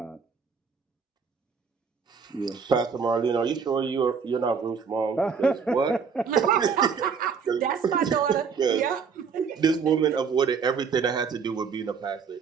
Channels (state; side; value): quieter; left; 6.0 dB